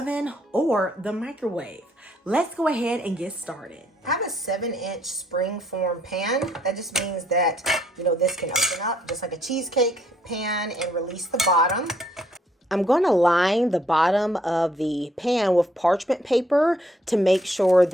or the microwave. Let's go ahead and get started. I have a 7-inch spring-form pan. That just means that, this can open up just like a cheesecake pan and release the bottom. I'm going to line the bottom of the pan with parchment paper to make sure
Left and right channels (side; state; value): both; normal; correlation 0.68